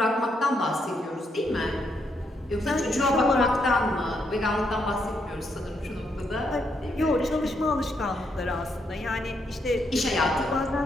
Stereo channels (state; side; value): normal; both; correlation 0.77